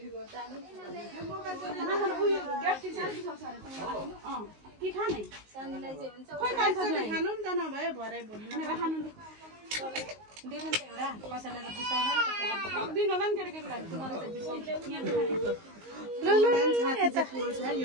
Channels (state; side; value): late; left; 19 ms